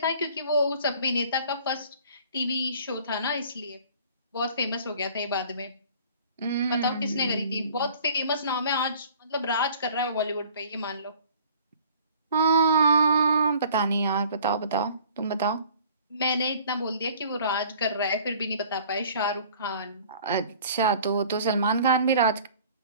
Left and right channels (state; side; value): inverted; both; correlation -0.51